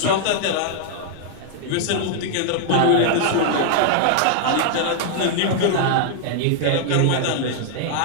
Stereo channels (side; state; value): both; different; correlation -0.01